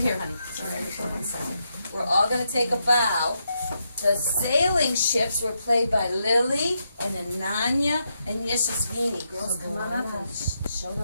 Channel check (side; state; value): both; inverted; correlation -0.82